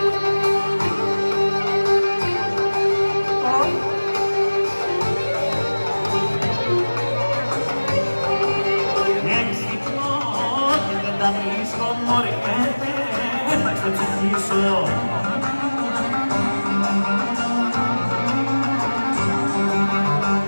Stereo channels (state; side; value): inverted; both; correlation -1.00